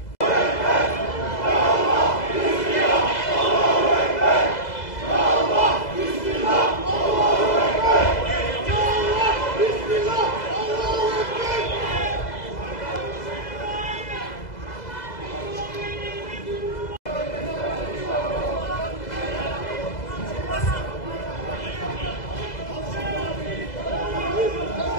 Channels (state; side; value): late; right; 2.0 ms